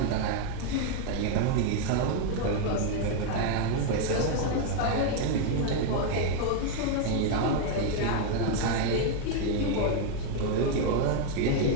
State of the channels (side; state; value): both; different; correlation 0.01